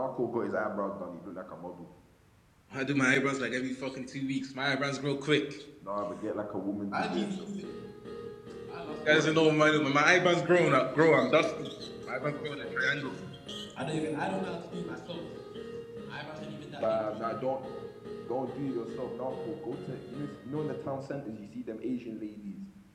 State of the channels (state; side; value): identical; both; correlation 1.00